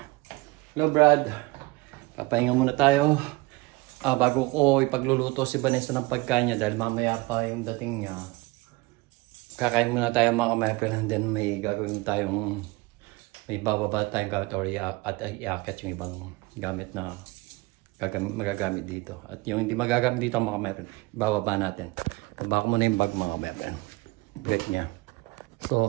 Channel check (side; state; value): left; quieter; 23.3 dB